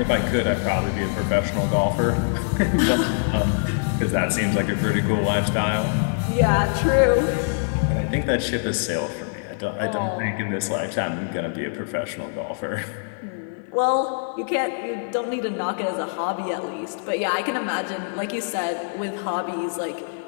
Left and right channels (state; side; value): silent; right; 56 dB below the other